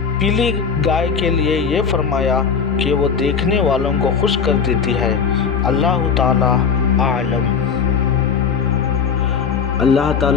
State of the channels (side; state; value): right; quieter; 6.4 dB